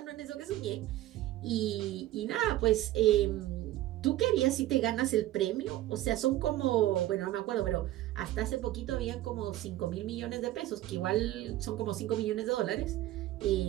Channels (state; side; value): quieter; left; 15.0 dB